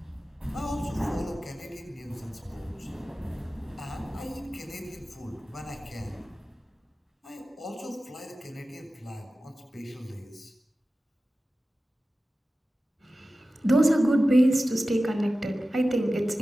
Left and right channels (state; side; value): normal; both; correlation 0.95